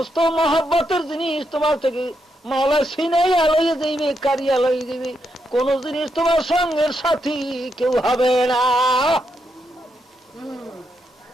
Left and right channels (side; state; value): both; normal; correlation 0.81